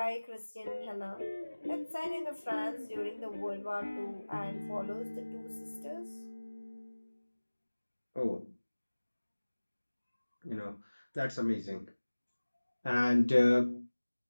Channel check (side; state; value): both; inverted; correlation -1.00